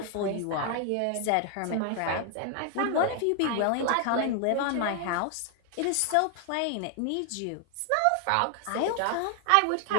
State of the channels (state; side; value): different; both; correlation 0.00